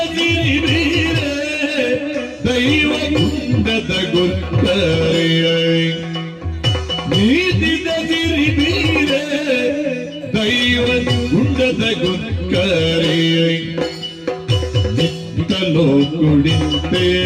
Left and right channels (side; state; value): both; identical; correlation 1.00